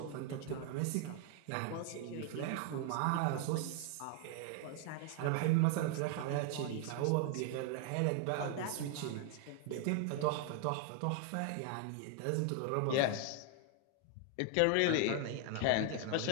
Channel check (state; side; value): different; both; correlation 0.00